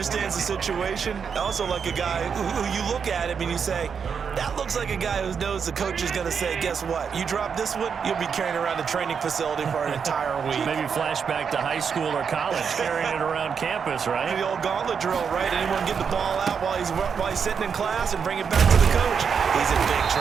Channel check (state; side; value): quieter; left; 6.5 dB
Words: the situation. I also like a guy who you look at him and you say, that looks like a guy who knows the coach is going to say, guess what? You drop this one, you'll be carrying around the training facility for an entire week. Maybe flashback to high school or college, carrying it around campus, right? The old gauntlet drill, right? Anyone get the ball out while he's sitting in class and bring it back to the coach? He's in big